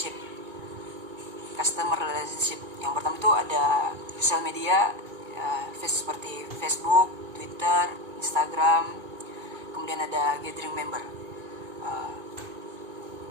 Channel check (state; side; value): late; left; 2.4 ms